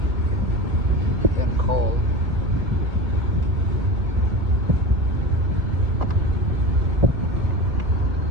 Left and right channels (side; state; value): left; late; 1.3 ms